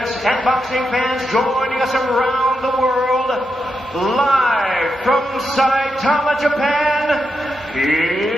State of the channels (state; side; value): normal; both; correlation 0.85